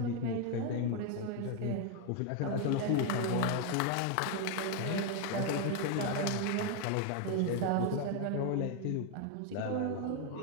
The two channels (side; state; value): both; different; correlation 0.01